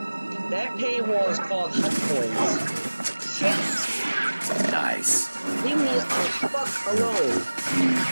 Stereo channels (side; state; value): both; inverted; correlation -1.00